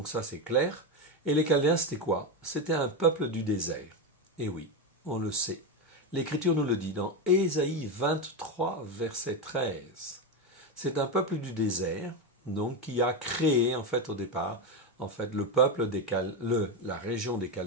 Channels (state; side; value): normal; both; correlation 0.12